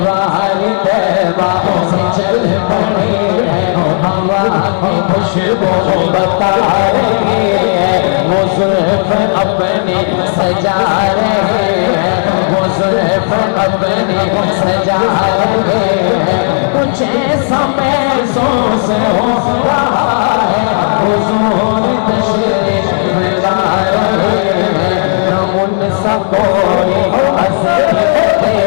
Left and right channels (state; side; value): silent; right; digital silence